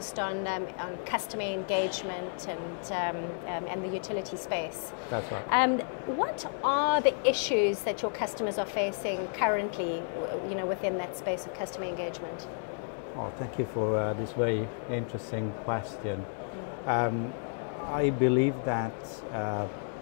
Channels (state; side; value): silent; right; 57 dB below the other